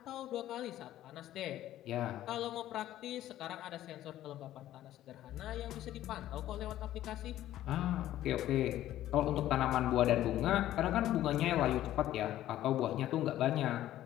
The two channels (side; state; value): right; quieter; 13.4 dB